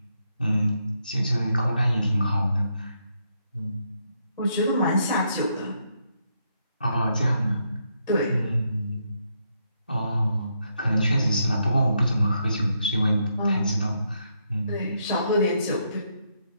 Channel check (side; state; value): both; inverted; correlation -0.78